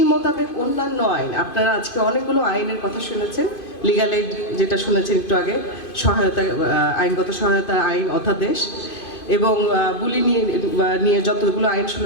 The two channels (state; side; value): late; right; 2.5 ms